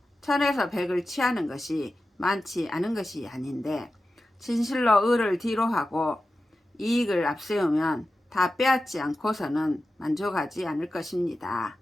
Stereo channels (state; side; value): normal; both; correlation 0.93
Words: 천에서 백을 취하는 것이 많지 않은 것이 아닌데 진실로 의를 뒤로 하고 이익을 앞세우면 다 빼앗지 않고서는 만족하지 않을 것입니다.